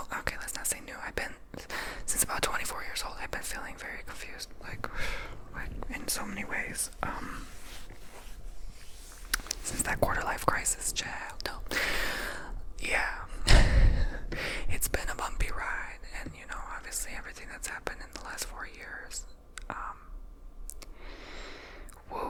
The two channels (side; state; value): both; identical; correlation 1.00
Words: okay, let's not say new. I've been, since about 24 years old, I've been feeling very confused, like in so many ways. Since that quarter life crisis, child. No. Yeah. It's been a bumpy ride, and obviously everything that's happened in the last 4 years.